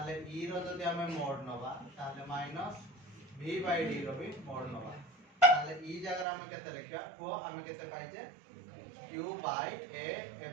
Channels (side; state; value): left; drops out; at 6.2 s